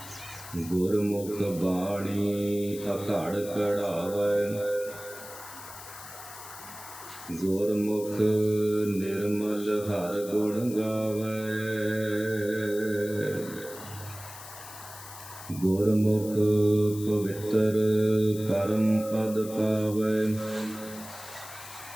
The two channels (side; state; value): left; noise; hiss, 14 dB below the sound